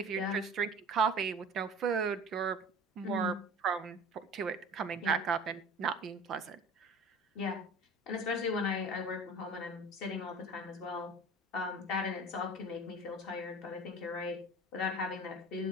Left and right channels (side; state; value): both; normal; correlation 0.41